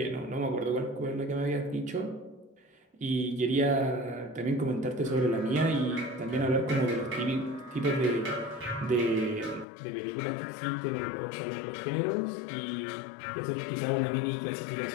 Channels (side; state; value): right; drops out; at 9.7 s